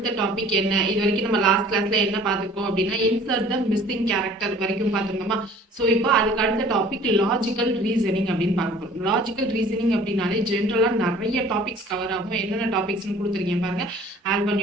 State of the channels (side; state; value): both; normal; correlation 0.51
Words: டாபிக் என்ன? இது வரைக்கும் நம்ம லாஸ்ட் கிளாஸ்ல என்ன பார்த்துருக்கோம் அப்படின்னா, இன்சர்ட் த மிஸ்ஸிங் கேரக்டர் வரைக்கும் பார்த்துருந்தோமா. ஸோ இப்போ அதுக்கு அடுத்த டாபிக் லாஜிக்கல் ரீசனிங் அப்படின்னு பார்க்க போகிறோம். லாஜிக்கல் ரீசனிங் அப்படின்னாலே ஜென்ரலாக நிறைய டாபிக்ஸ் கவர் ஆகும். என்னென்ன டாபிக்ஸ்னு கொடுத்துருக்கேன் பாருங்க. ஆல்பா